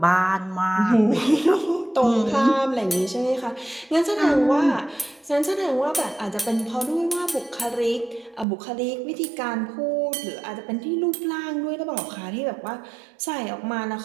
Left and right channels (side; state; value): left; drops out; at 8.5 s